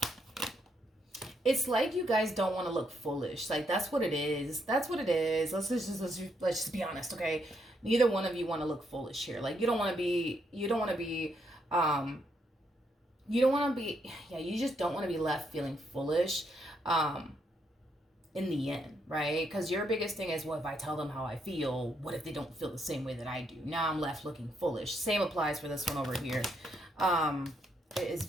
It's like you guys don't want to look foolish. Like, that's what it is. That's what it is. Let's just be honest, okay? Neither one of you want to look foolish here. Like, you just don't want to be left feeling foolish. In the end, right? Because your biggest thing is, well, if I tell them how I feel, what if they don't feel the same way that I do? Now I'm left looking foolish. Same applies for this one over here. It is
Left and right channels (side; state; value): both; normal; correlation 0.76